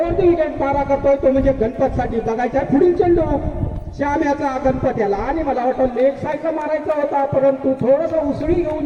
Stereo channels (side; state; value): both; identical; correlation 1.00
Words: the wicket पारा करतोय तो म्हणजे गणपत साठी बघायचा पुढील चेंडू श्याम याचा गणपत याला आणि मला वाटतं लेग साईडला मारायचा होता परंतु थोडस उसळी